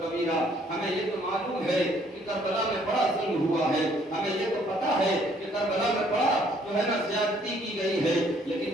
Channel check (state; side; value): normal; both; correlation 0.63